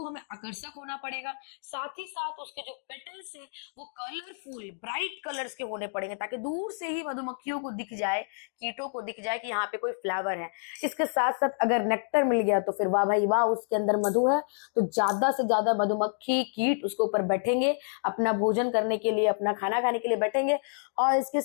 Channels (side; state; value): right; silent; digital silence